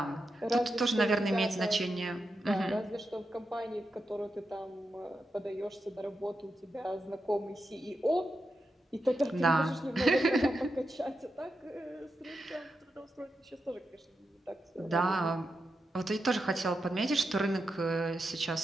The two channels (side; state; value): both; normal; correlation 0.87